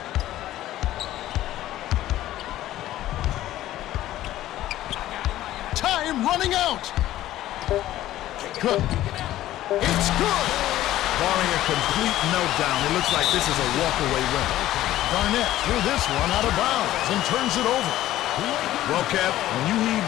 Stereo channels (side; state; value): right; quieter; 14.2 dB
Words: Time running out. Cook. It's good. Barring a complete meltdown, it looks like this is a walkaway win. Garnett threw this one out of bounds and turns it over. Well, Kev, when you heave